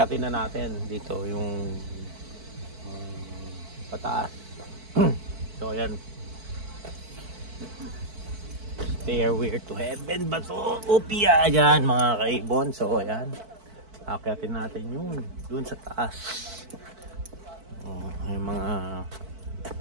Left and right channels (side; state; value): left; late; 4.5 ms